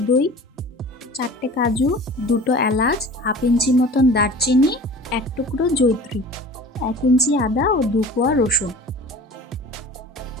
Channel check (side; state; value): both; normal; correlation 0.41